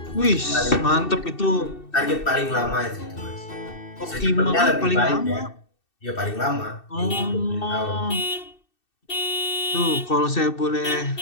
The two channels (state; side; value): late; right; 2.7 ms